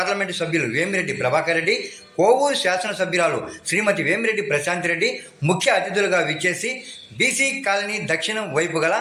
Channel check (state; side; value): identical; both; correlation 1.00